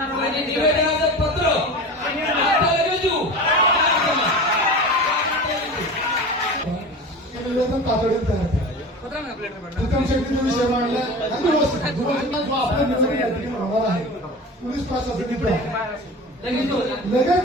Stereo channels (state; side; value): normal; both; correlation 0.33